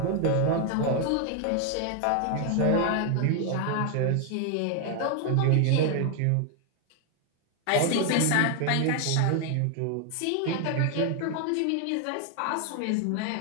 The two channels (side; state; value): both; different; correlation 0.00